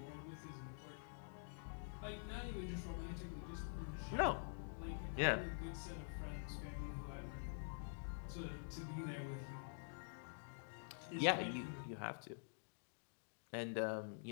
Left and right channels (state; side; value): silent; right; digital silence